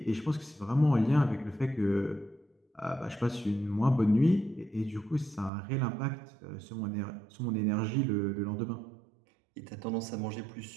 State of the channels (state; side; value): drops out; left; at 5.5 s